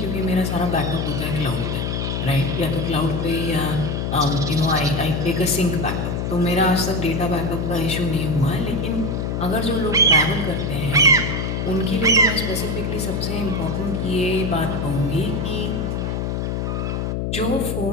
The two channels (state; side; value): noise; left; hum, 1 dB below the sound